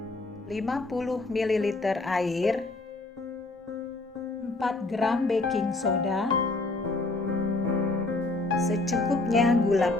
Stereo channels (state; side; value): quieter; right; 3.1 dB